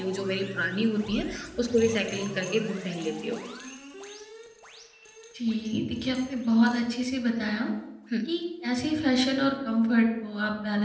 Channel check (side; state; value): both; identical; correlation 1.00